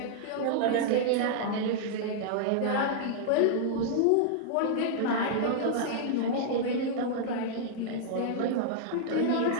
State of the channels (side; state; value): both; different; correlation -0.01